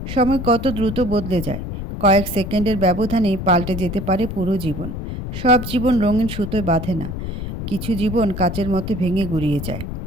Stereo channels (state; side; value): noise; left; rumble, 6 dB below the sound